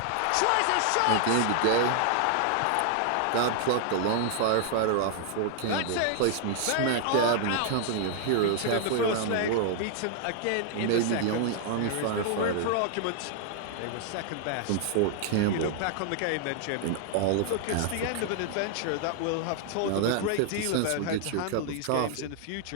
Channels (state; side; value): different; both; correlation 0.00